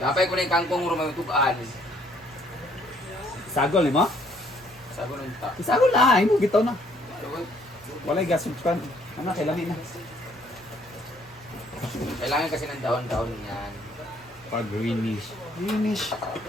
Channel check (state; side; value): normal; both; correlation 0.65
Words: Napay ko na yung kangkong rumamitukaan. Sagol ni mo? Sabi nung ta. Isagol na, ay mo bitaw na. Walay gasol kan. Ano kailangan na? Kailangan kasi ng daon-daon yan. Pag greenish. Greenish.